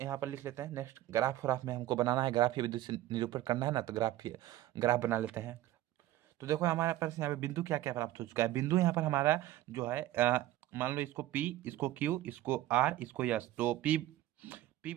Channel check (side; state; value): left; quieter; 14.8 dB